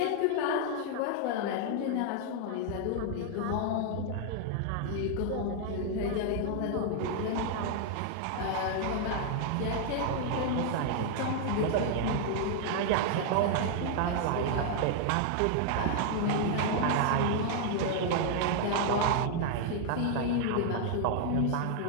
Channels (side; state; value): both; different; correlation 0.00